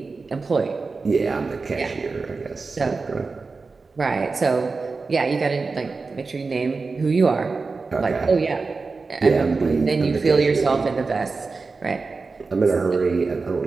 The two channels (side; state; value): left; quieter; 4.2 dB